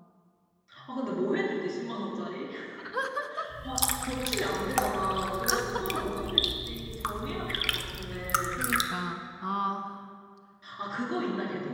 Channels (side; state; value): both; identical; correlation 1.00